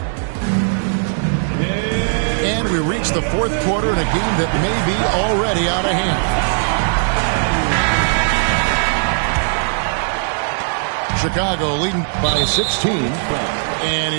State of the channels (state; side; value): silent; left; digital silence